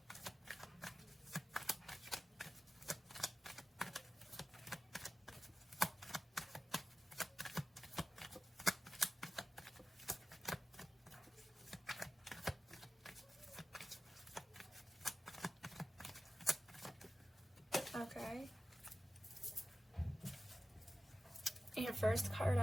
Okay. Your first card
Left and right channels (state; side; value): normal; both; correlation 0.94